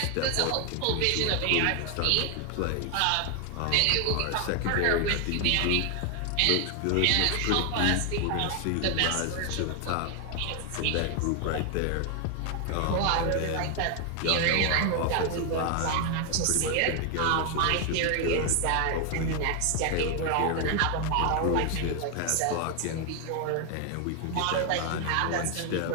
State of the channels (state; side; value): different; both; correlation 0.00